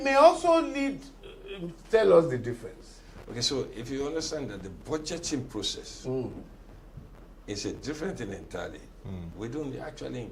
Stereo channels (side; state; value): both; identical; correlation 1.00